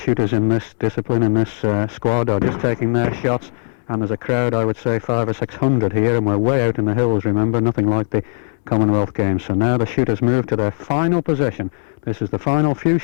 in this discipline, in this squad, are just taking their shots. And there's a crowd, I would say 500 or 600 here, and we're way out in the hills, remember, nothing like the Commonwealth Games. So now the shooters move to their final position. This is the final few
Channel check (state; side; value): silent; right; 67 dB below the other